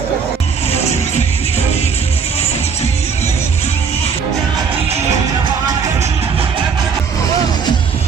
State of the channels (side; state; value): left; quieter; 5.9 dB